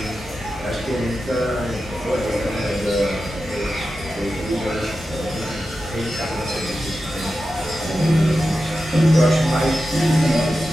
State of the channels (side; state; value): both; normal; correlation 0.91